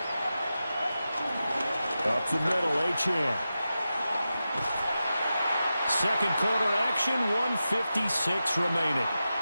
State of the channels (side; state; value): both; inverted; correlation -0.92